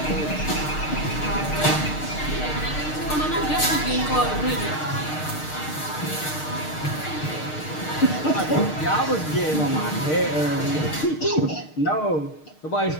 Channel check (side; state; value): right; late; 6.5 ms